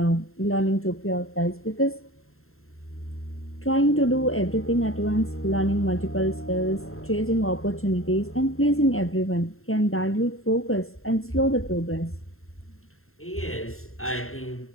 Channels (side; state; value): right; late; 0.61 ms